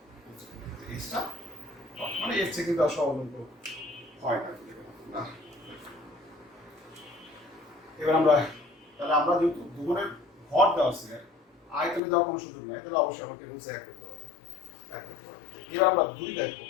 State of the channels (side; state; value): right; drops out; at 12.0 s